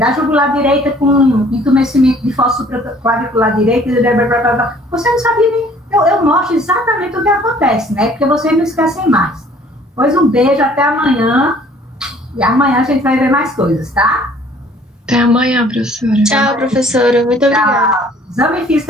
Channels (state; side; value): normal; both; correlation 0.56